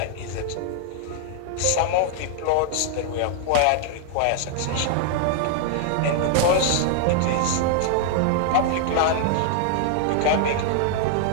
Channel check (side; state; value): both; different; correlation -0.01